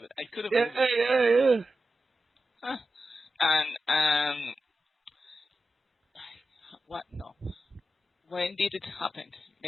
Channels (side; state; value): both; normal; correlation 0.91